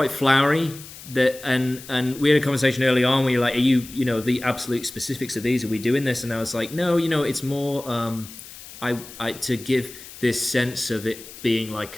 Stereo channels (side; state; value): left; noise; hiss, 16 dB below the sound